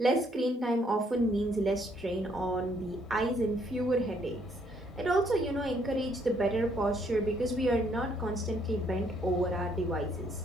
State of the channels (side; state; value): both; normal; correlation 0.69